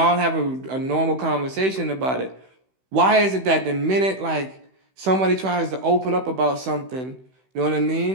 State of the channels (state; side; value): late; left; 16 ms